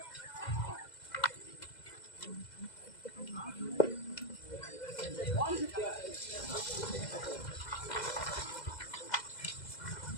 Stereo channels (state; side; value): late; right; 2.0 ms